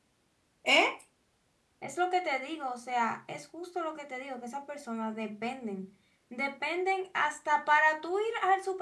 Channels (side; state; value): both; identical; correlation 1.00